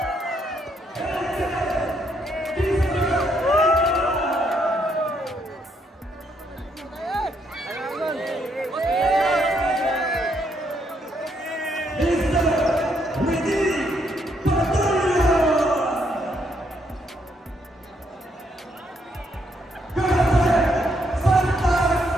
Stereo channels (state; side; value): normal; both; correlation 0.74